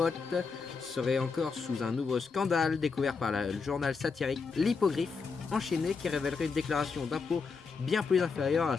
serait encore sous un nouveau scandale découvert par le journal satirique L'Hippogriffe, enchaîné, qui révélerait une déclaration d'impôt bien plus inférieure à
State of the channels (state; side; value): quieter; right; 5.0 dB